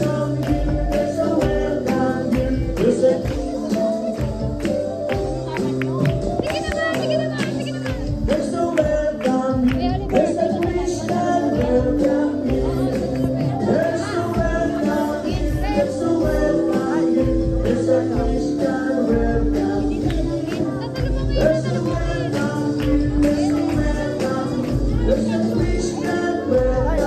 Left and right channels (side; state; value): both; identical; correlation 1.00